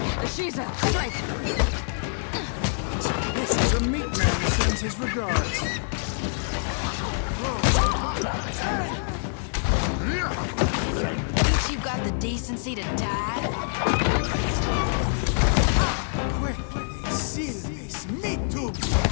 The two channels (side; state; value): right; silent; 61 dB below the other